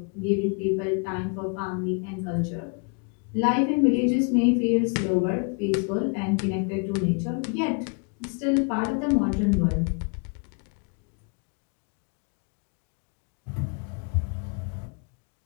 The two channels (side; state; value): right; quieter; 37.3 dB